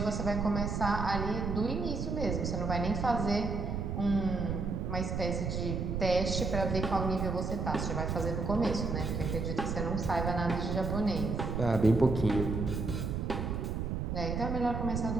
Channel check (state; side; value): noise; right; rumble, 2 dB below the sound